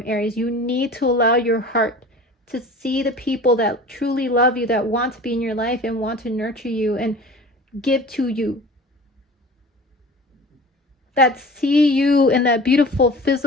Aries. You need to allow your heart to see the people that truly love you, that want to be in your life and want to nurture you and give to you, that see you in that beautiful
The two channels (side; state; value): both; normal; correlation 0.40